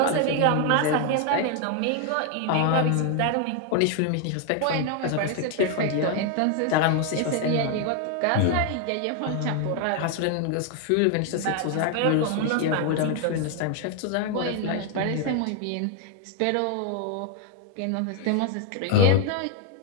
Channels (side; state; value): both; different; correlation 0.01